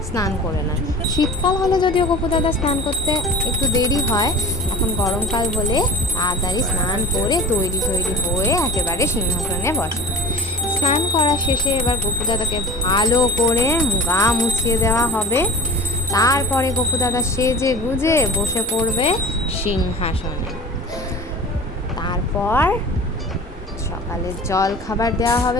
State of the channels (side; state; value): both; normal; correlation 0.39